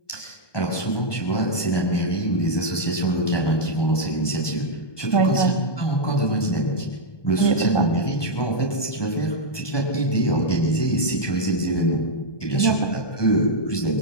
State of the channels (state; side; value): late; right; 1.2 ms